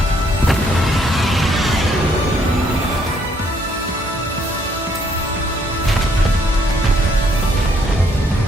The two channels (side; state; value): both; normal; correlation 0.68